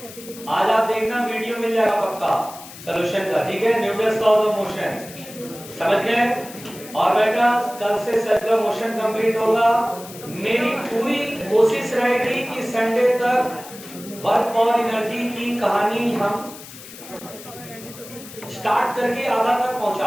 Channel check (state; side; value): noise; left; hiss, 16 dB below the sound